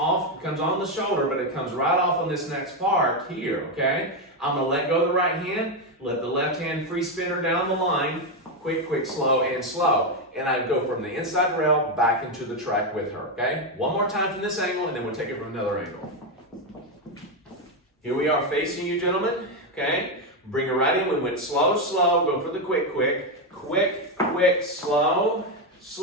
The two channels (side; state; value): both; normal; correlation 0.07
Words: comes on the shoulder, but it comes right off on this next part here, okay? I'm going to let go of the right hand, let the left hand free spin her down the line, quick, quick, slow, and slow. And I go from the inside rail back into the track with her, okay? One more time from this angle, and then we'll take it from another angle. Here we are facing you, gentlemen, okay? Bring her right in. We went slow, slow, go for the quick, quick, quick, quick, slow,